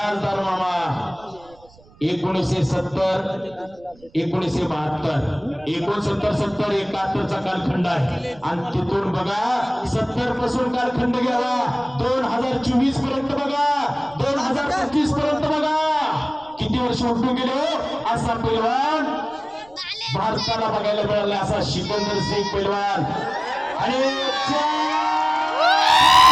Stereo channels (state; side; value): noise; right; rumble, 27 dB below the sound